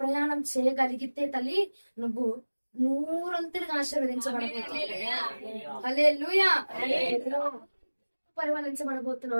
ప్రయాణం చేయగలిగితే తల్లి నువ్వు నూరంతులుగా ఆశీర్వదించబడబోతున్నావు. హల్లెలూయా.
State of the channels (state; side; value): inverted; both; correlation -1.00